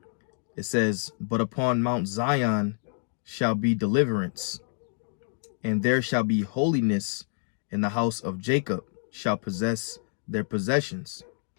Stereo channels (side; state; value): right; silent; 59 dB below the other